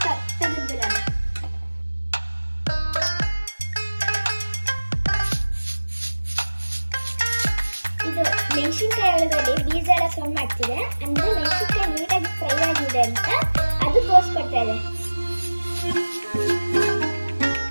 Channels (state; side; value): inverted; both; correlation -1.00